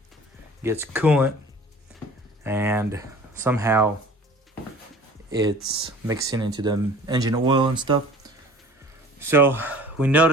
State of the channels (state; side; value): normal; both; correlation 0.46